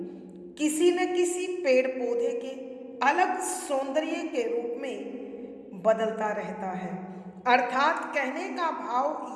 किसी न किसी पेड़ पौधे के अलग सौंदर्य के रूप में बदलता रहता है। अर्थात कहने का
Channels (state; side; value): identical; both; correlation 1.00